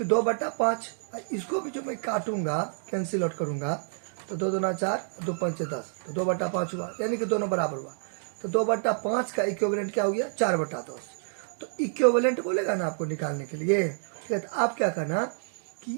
2/5, इसको भी जो मैं काटूंगा, कैंसिल आउट करूंगा, तो 2 दूना 4, 2 पंचे 10, तो 2/5 हुआ, यानी कि दोनों बराबर हुआ। तो 2/5 का इक्विवेलेंट क्या हो गया? 4/10। तो इक्विवेलेंट बोलेगा ना आपको निकालने के लिए, ठीक है, तो आप क्या करना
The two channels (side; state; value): left; silent; digital silence